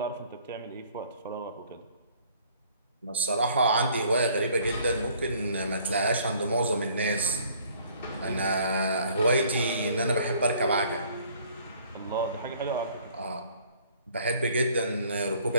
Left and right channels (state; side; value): inverted; both; correlation -0.58